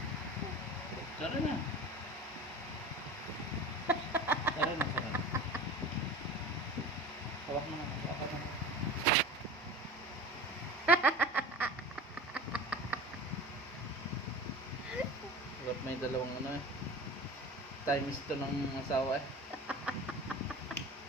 Sorry na. Sorry na, sorry. Hawak mo na. Hawak mo na. Ba't may dalawang ano eh. Times to ng asawa eh.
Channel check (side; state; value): both; normal; correlation 0.35